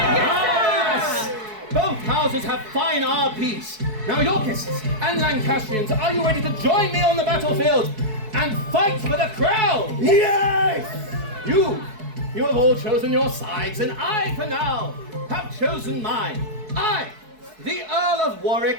Yes! Both houses have fine RPs. Now, Yorkists and Lancastrians, are you ready to join me on the battlefield and fight for the crown? Yes! You have all chosen your sides, and I, for now, have chosen mine. I, the Earl of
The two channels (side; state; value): left; late; 4.6 ms